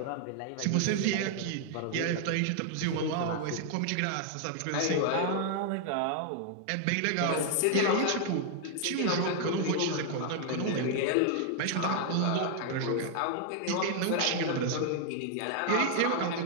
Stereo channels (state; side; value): different; both; correlation 0.00